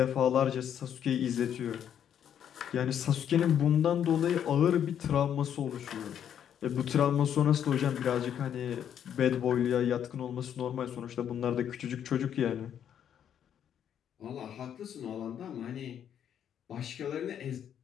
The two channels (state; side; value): quieter; right; 9.2 dB